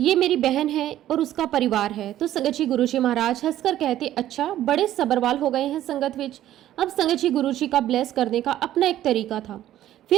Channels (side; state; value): left; quieter; 12.9 dB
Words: मेरी बहन है और उसका परिवार है। तो संगत जी गुरुजी महाराज हंसकर कहते, अच्छा बड़े सबरवाल हो गए हैं संगत विच। अब संगत जी गुरुजी का ब्लेस करने का अपना एक तरीका था।